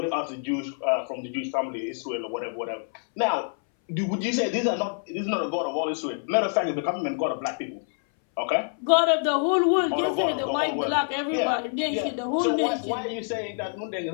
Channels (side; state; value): right; silent; 61 dB below the other